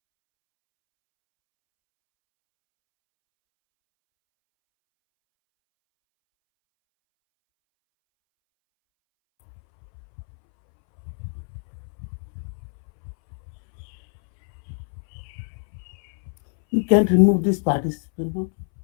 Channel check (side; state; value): right; silent; 62 dB below the other